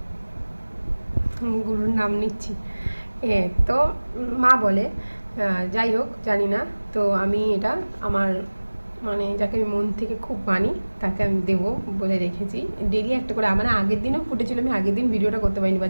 গুরুর নাম নিচ্ছি। তো মা বলে, যাই হোক জানি না, তো আমি এটা আমার মানে যাকে আমি মন থেকে খুব মানি তাকে আমি দেবো বলে রেখেছি। ডেলি একটা করে, মানে আগের দিনও ফুটেছিল, আমি আগের দিন ভিডিওটা করতে পারিনি, বা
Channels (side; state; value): both; inverted; correlation -1.00